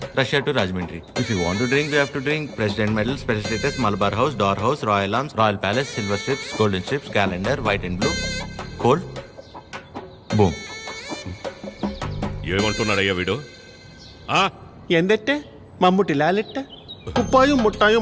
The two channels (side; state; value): both; identical; correlation 1.00